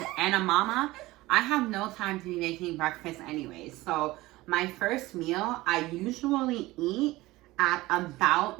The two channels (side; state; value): left; quieter; 18.9 dB